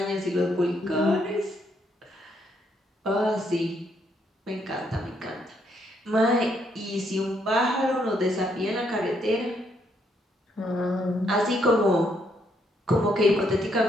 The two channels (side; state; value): both; normal; correlation 0.74